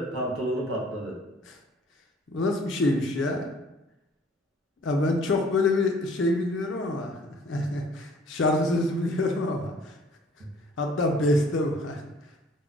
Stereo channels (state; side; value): normal; both; correlation 0.55